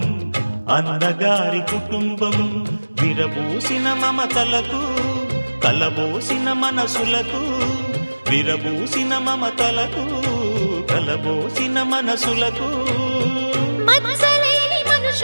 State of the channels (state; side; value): inverted; both; correlation -1.00